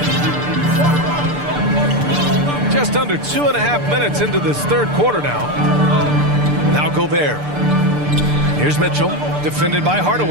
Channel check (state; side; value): late; left; 6.8 ms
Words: Just under 2.5 minutes into this third quarter now. Now Gobert. Here's Mitchell, defended by